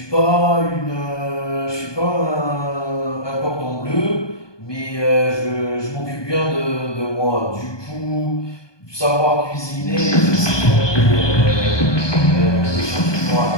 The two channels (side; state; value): right; late; 1.2 ms